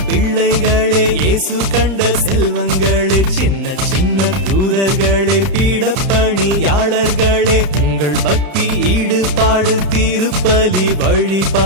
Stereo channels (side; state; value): left; late; 31 ms